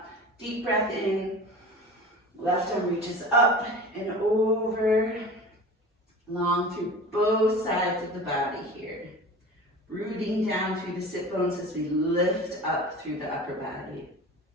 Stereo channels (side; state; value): both; normal; correlation 0.36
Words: deep breath in, left arm reaches up and over, long through both sides of the body here. Rooting down through the sit bones as we lift up through the upper body.